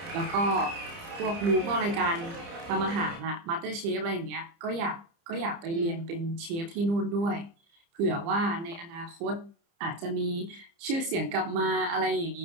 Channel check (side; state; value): left; late; 30 ms